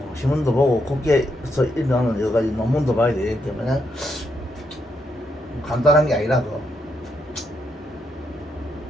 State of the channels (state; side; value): normal; both; correlation 0.79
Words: 신문도 보고 국제에서 일어나는 여러 가지 논문도 봐야 되기 때문에 간단한 게 아니라